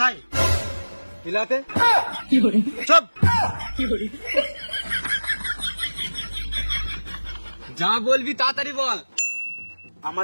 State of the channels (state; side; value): inverted; both; correlation -1.00